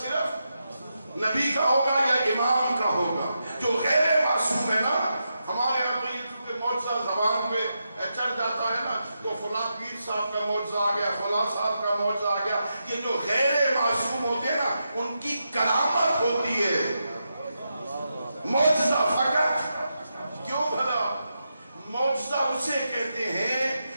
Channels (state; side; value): inverted; both; correlation -0.86